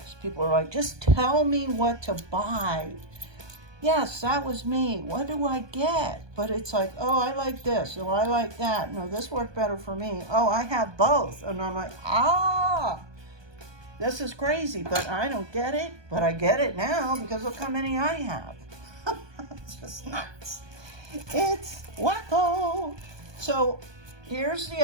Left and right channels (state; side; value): late; left; 1.2 ms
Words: people are like, just tell me what to buy. Yes, that was me. What do I get? But it's like, oh, I like this. Oh, I like that. No, this worked better for me. Oh, I have both. And I'm like, this is crazy, but I don't get it. But I get it now because look how many I have. It's just nuts. It's wacko. So here's the